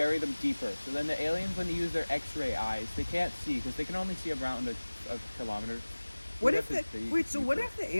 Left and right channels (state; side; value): inverted; both; correlation -1.00